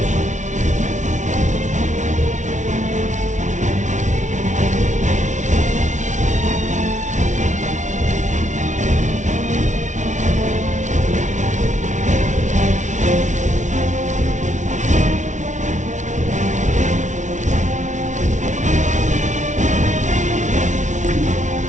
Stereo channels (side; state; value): left; late; 0.36 ms